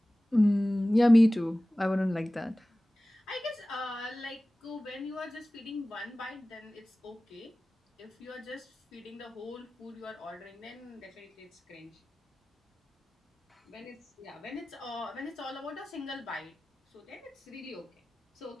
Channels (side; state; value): both; normal; correlation 0.97